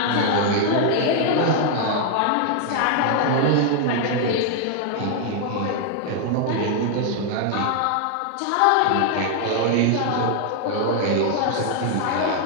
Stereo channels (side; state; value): both; different; correlation 0.00